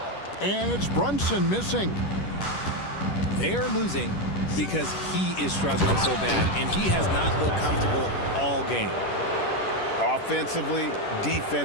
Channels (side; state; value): right; late; 10 ms